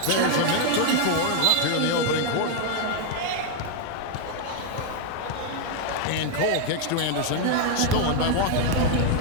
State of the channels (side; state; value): both; different; correlation 0.00